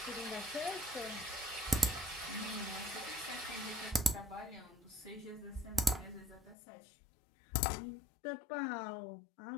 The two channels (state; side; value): drops out; right; at 6.6 s